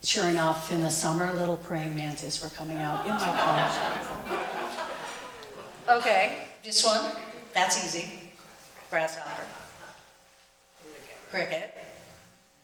Sure enough, in the summer, little praying mantis were coming out in my car. Okay, this one, that's easy. Grasshopper. Cricket.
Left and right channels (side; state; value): both; identical; correlation 1.00